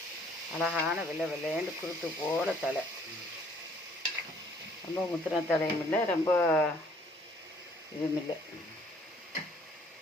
அழகான வெள்ளைன்னு குருத்து போல தலை. ரொம்ப முத்தின தலையும் இல்லை, ரொம்ப இதுவும் இல்லை.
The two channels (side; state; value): both; normal; correlation 0.61